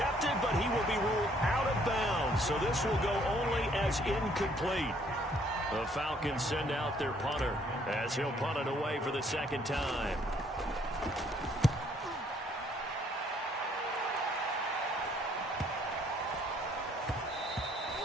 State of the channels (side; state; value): both; normal; correlation 0.64